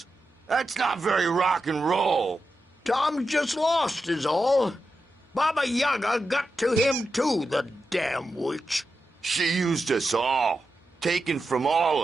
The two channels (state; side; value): normal; both; correlation 0.89